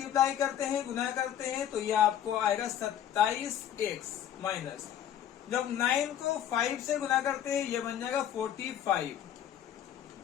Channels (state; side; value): quieter; right; 10.3 dB